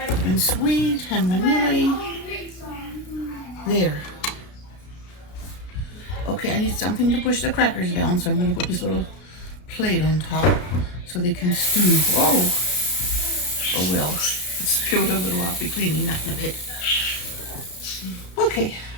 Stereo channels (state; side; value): late; right; 32 ms